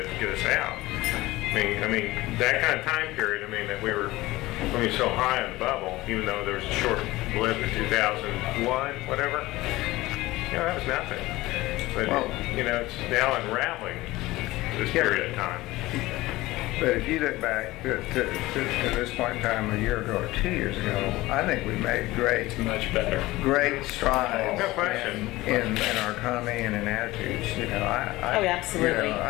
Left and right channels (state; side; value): quieter; right; 18.7 dB